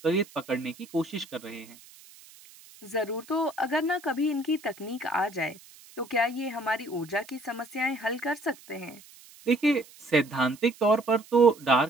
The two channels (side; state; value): right; noise; hiss, 22 dB below the sound